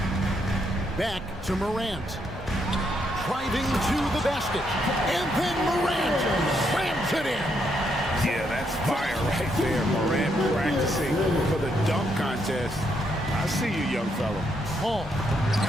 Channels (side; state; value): both; normal; correlation 0.76